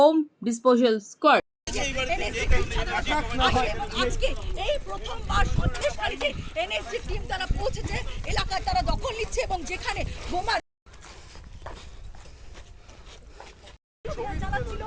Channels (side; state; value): both; identical; correlation 1.00